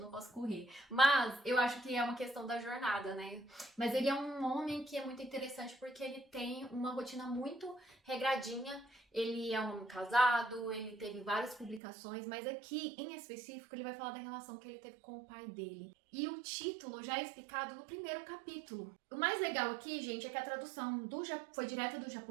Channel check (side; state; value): left; drops out; at 11.8 s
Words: posso correr. Mas eu acho que é uma questão da jornada, né? Mas ele é um homem que é muito interessante porque ele tem uma rotina muito regradinha. Ele é um homem casado, ele teve várias publicações, mas aqui, em específico, ele vai falar da relação que ele teve com o pai dele. E o título já é explicado no primeiro capítulo. O mais legal aqui, gente, é que a tradução foi direta do